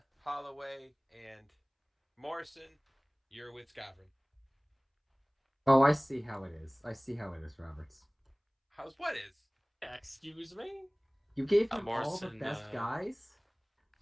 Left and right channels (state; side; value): identical; both; correlation 1.00